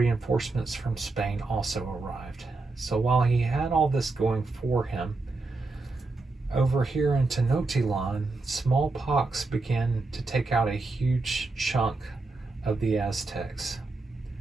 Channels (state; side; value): quieter; left; 3.5 dB